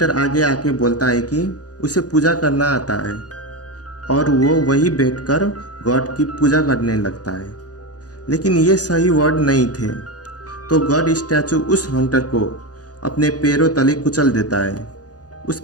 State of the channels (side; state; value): right; late; 0.68 ms